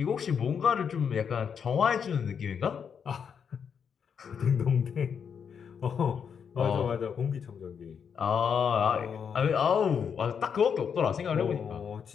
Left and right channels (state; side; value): quieter; right; 7.1 dB